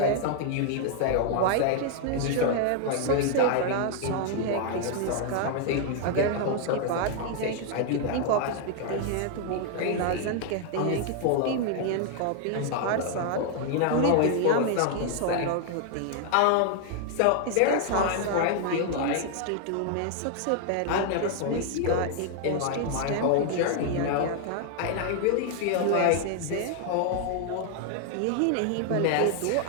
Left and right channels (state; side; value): different; both; correlation 0.00